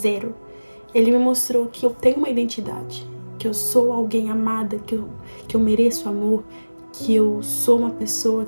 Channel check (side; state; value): both; inverted; correlation -1.00